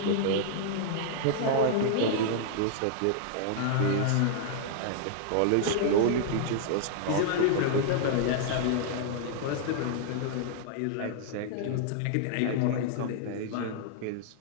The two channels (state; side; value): different; both; correlation -0.01